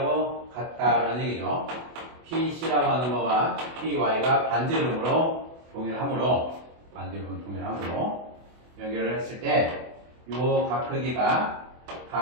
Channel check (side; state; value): left; late; 24 ms